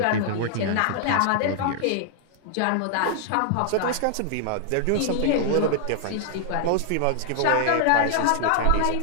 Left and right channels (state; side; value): different; both; correlation -0.01